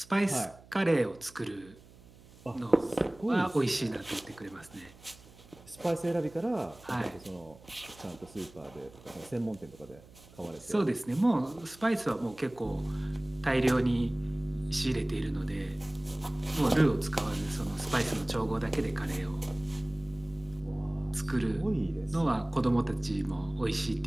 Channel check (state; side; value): noise; right; hum, 23 dB below the sound